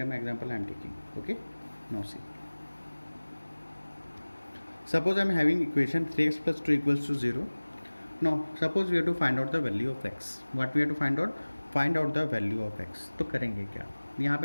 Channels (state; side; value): inverted; both; correlation -1.00